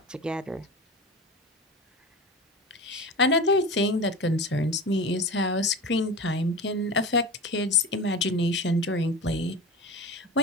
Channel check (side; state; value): both; normal; correlation 0.30